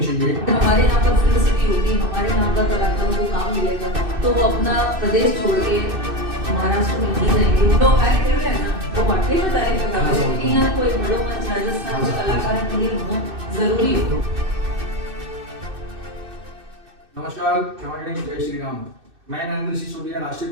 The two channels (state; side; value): late; left; 2.6 ms